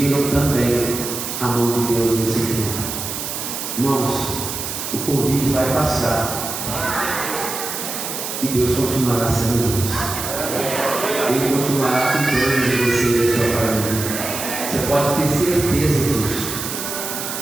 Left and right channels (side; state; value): right; noise; hiss, 5 dB below the sound